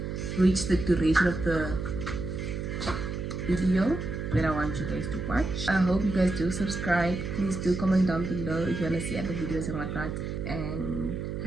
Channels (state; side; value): noise; right; hum, 4 dB below the sound